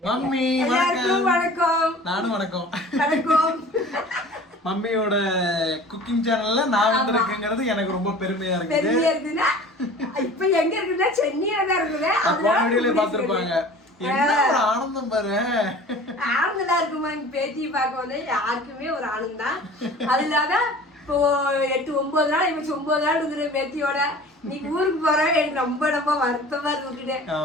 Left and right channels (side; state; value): both; normal; correlation 0.43